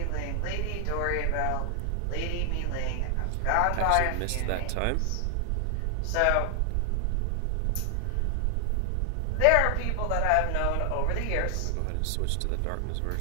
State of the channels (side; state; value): both; different; correlation 0.00